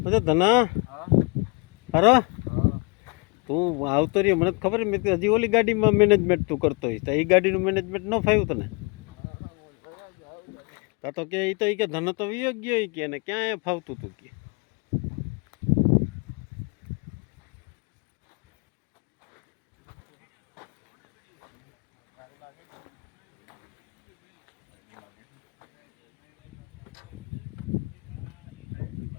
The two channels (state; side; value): quieter; right; 32.0 dB